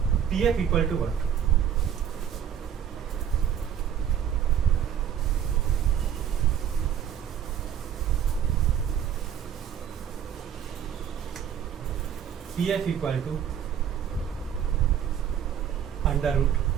PF equal to what? pf equal to under root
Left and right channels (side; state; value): left; quieter; 9.1 dB